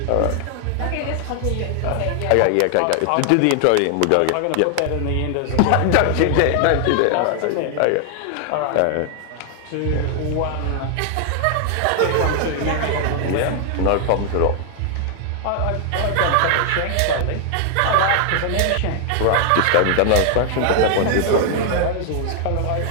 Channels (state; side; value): different; both; correlation 0.00